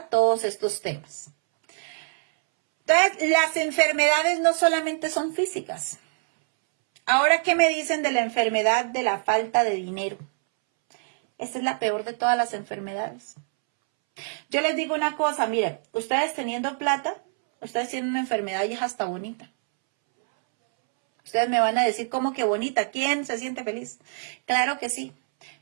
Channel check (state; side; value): silent; left; 62 dB below the other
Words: todos estos temas. Entonces, las enfermedades no solamente son físicas. Ahora, ¿qué me dicen de la enfermedad de la falta de dinero? Esta es la peor de todas las enfermedades. Yo les digo una cosa, miren, ustedes teniendo plata, ustedes tienen una enfermedad y es hasta bonita. Ustedes me van a decir, ¿cómo que bonita? ¿Quién se siente feliz? Claro que sí,